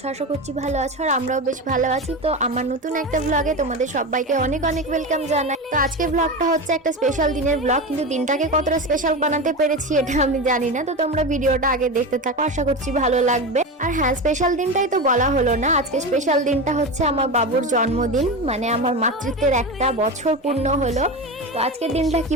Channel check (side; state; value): both; normal; correlation 0.22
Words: আশা করছি ভালো আছো, আর আমরাও বেশ ভালো আছি। তো আমার নতুন একটা ব্লগে তোমাদের সবাইকে অনেক অনেক ওয়েলকাম জানাই। তো আজকের ব্লগটা হচ্ছে একটা স্পেশাল দিনের ব্লগ, কিন্তু দিনটাকে কতটা স্পেশাল বানাতে পেরেছি এটা আমি জানি না। তো তোমরা ভিডিওটা আগে দেখতে থাকো, আশা করছি ভালো লাগবে। আর হ্যাঁ, স্পেশাল দিনটাই তো বলা হলো না, আজকে স্পেশাল দিনটা হচ্ছে আমার বাবুর জন্মদিন, মানে আমার মাতৃত্বের একটা বছর পূর্ণ হলো। তো আজকের দিনটা